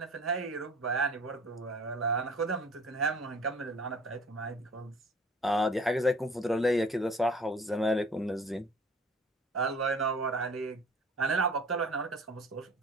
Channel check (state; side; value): normal; both; correlation 0.48